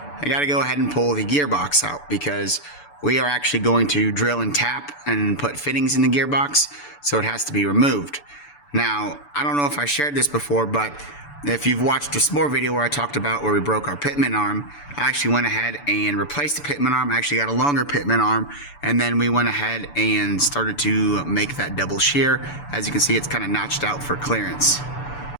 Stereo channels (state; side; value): late; right; 6.9 ms